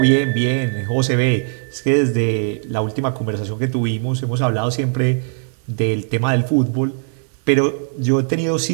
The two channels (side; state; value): left; silent; 66 dB below the other